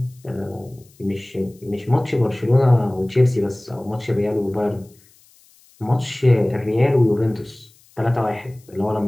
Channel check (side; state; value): left; noise; hiss, 29 dB below the sound